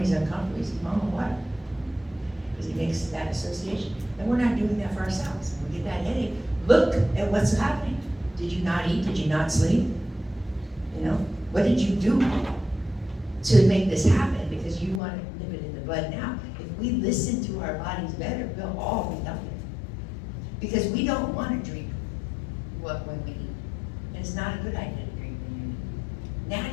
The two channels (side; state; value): right; drops out; at 15.0 s